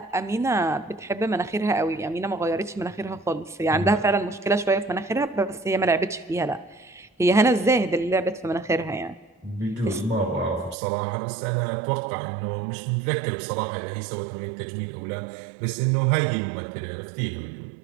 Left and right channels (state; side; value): drops out; left; at 10.8 s